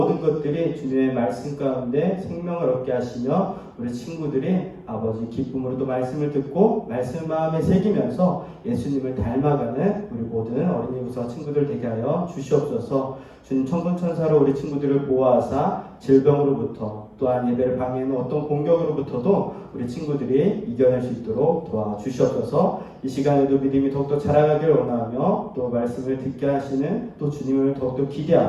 것들이 주님의 말씀 가운데 생명을 얻게 하시며 우리 친구들이 아버지 기쁨으로 또 말씀을 듣고 말씀을 마음에 새기면서 예수님을 닮아가는 우리 모든 어린이부서 친구들 되게 하여 주시옵소서. 주님 천군천사로 우리 친구들을 보호하사 질병으로부터 또한 예배를 방해하는 어떤 공격으로부터도 우리 친구들이 이겨낼 수 있도록 도와주시옵소서. 이 시간에도 믿음이 더욱더 자라가기를 원하며 또 말씀을 듣게 하시는 또 주님을 더욱더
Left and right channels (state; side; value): identical; both; correlation 1.00